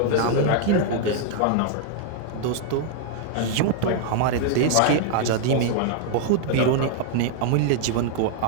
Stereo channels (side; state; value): both; different; correlation 0.00